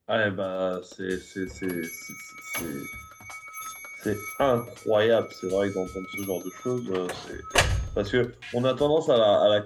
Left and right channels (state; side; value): identical; both; correlation 1.00